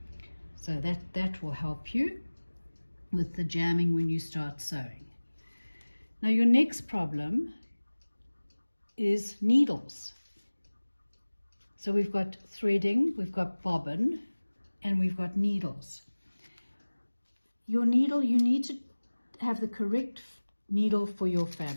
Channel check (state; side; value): inverted; both; correlation -1.00